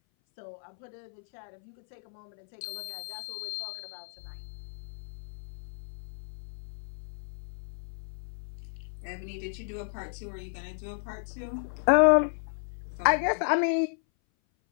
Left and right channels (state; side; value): silent; right; 56 dB below the other